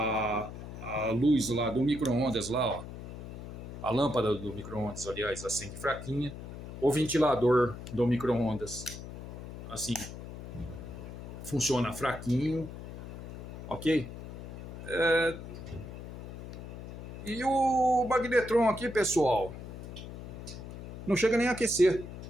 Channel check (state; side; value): noise; left; hum, 10 dB below the sound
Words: luz lá do micro-ondas lá, ó. A lâmpada do micro-ondas, aliás, acende fraquinha. O ventilador do micro-ondas, assim, funciona fraquinho, ok? E o magnetron aqui, pessoal, não chega nem a aquecer.